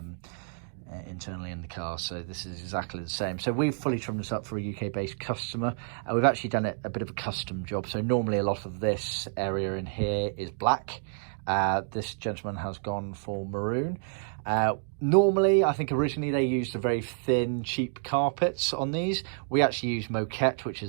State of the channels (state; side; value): silent; left; digital silence